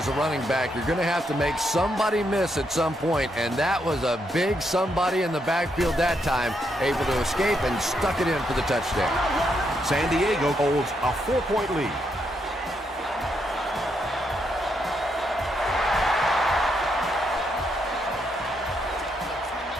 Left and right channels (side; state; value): both; normal; correlation 0.78